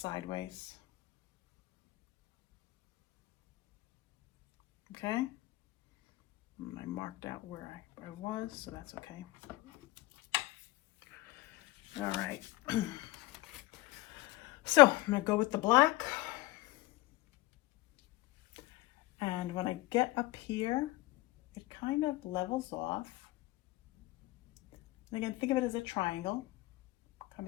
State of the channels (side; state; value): right; quieter; 19.0 dB